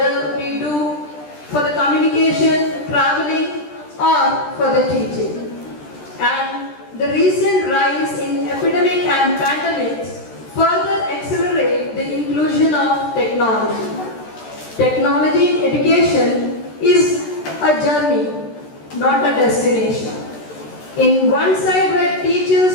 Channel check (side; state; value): right; late; 13 ms